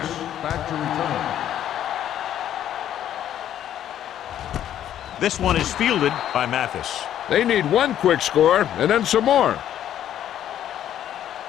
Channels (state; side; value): quieter; right; 11.0 dB